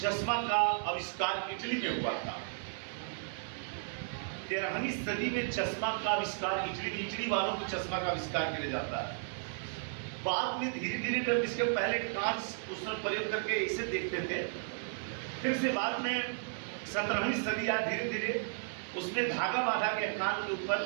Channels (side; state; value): left; silent; digital silence